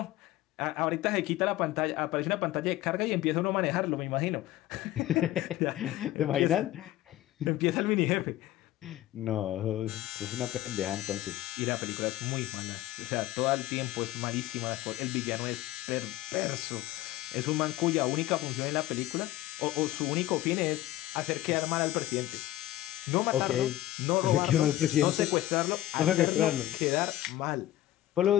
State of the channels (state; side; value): quieter; right; 14.8 dB